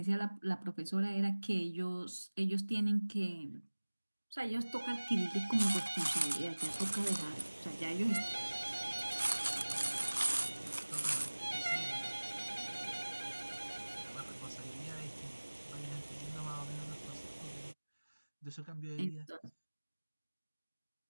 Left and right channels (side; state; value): both; inverted; correlation -1.00